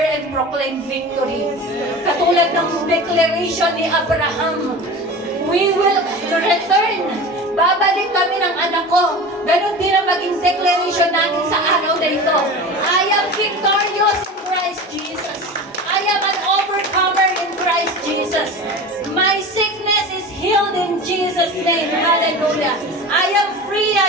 and proclaim victory. Katulad ng declaration ni Abraham, we will return. Babalik kami ng anak ko. Ganon din ang maging declaration natin sa araw na ito. I am victorious in Christ Jesus. I am an overcomer in Christ Jesus. My sickness is healed in Jesus' name. Hallelujah. I am free,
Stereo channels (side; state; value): both; normal; correlation 0.33